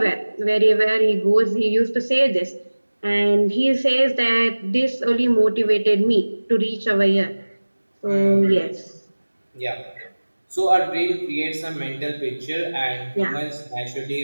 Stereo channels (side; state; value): both; inverted; correlation -1.00